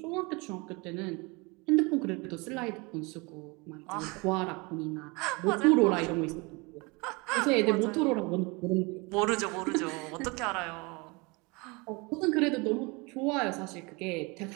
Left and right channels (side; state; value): left; quieter; 27.4 dB